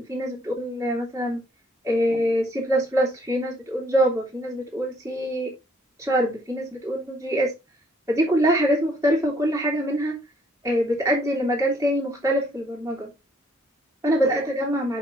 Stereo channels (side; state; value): both; normal; correlation 0.65